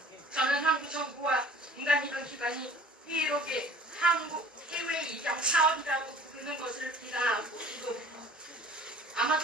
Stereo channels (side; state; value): both; normal; correlation 0.49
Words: 저는 한국 정부와 민간입양기관이 희애롭게 한국 해외 입양 사업이라고 부르는 것을 비난하고 이거